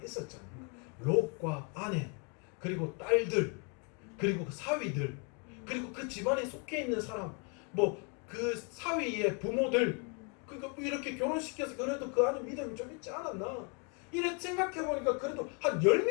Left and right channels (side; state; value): right; quieter; 36.4 dB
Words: 있었잖아요. 롯과 아내, 그리고 딸들, 그리고 그 사위들, 그리고 그 집안에 속해 있는 사람, 그 사위의 부모들, 이렇게 결혼시켜서 그래도 그 안에 믿음이 좀 있지 않았나? 이렇게 생각해 보니까 그래도 한